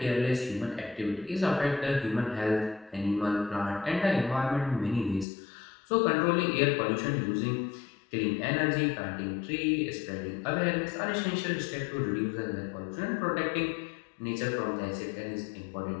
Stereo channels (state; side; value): drops out; right; at 5.2 s